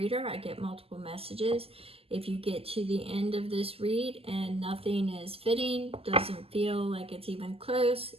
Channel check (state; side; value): late; left; 0.28 ms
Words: I get multiple messages. If you get to the end of this read and nothing is fitting, doesn't feel like it's even close,